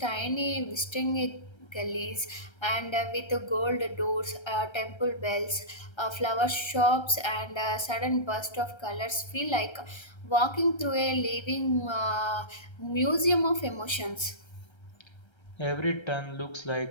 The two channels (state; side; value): late; right; 1.3 ms